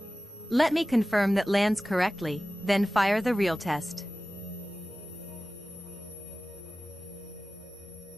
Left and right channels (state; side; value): normal; both; correlation 0.96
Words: Let me confirm that lands correctly, then fire the real test.